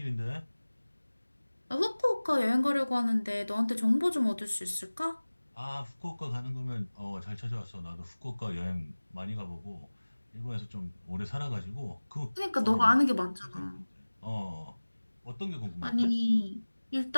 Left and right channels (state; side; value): inverted; both; correlation -1.00